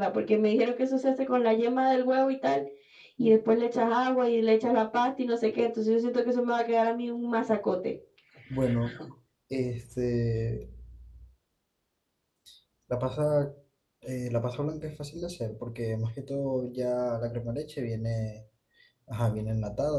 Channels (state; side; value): identical; both; correlation 1.00